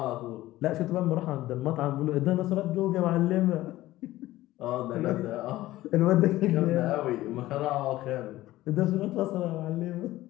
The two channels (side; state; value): right; quieter; 16.3 dB